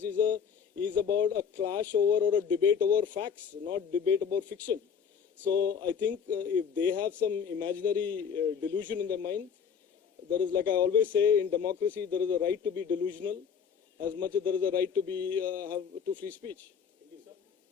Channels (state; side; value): quieter; right; 6.9 dB